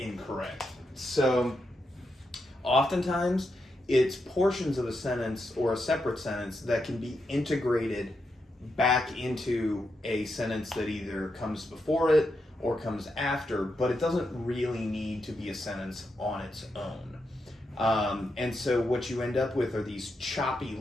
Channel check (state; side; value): normal; both; correlation 0.84